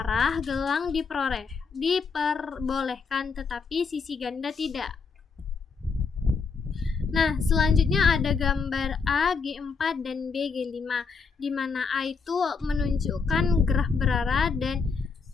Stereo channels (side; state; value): right; quieter; 5.1 dB